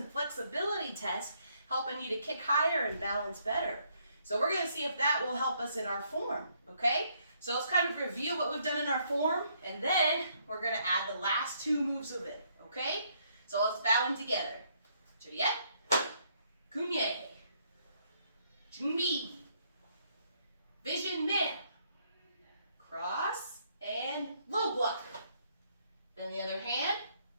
flexibility test, helping you to kick higher and balance better. So we're going to see if that will help us in our form, okay? So let's kind of review what we've done in our form, and then we're gonna add the last two moves of it, okay? So let's bow them together. Juliet, Kunye, Junbi, Vision Man, cross, and low block. Then the other hand,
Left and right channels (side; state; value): both; inverted; correlation -0.70